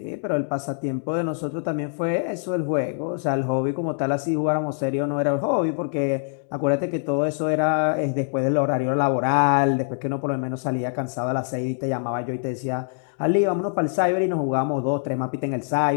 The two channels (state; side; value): silent; right; digital silence